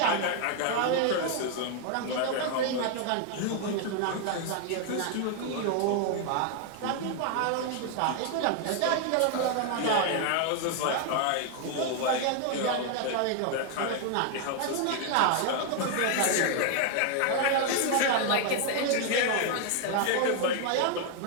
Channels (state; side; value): different; both; correlation 0.00